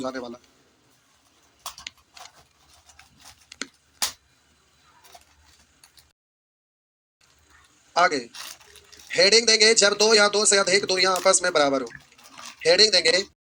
वाला। आगे हेडिंग देंगे जब दो या दो से अधिक दूरियां आपस में बराबर हो। हेडिंग देंगे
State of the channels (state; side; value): identical; both; correlation 1.00